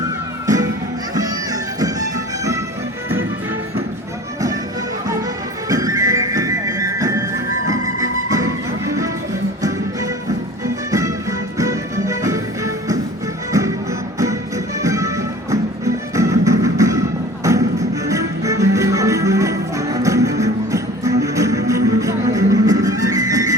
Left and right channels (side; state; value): both; normal; correlation 0.43